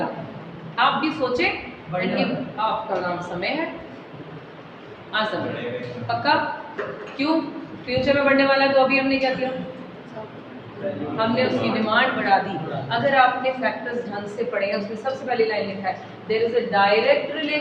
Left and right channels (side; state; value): both; identical; correlation 1.00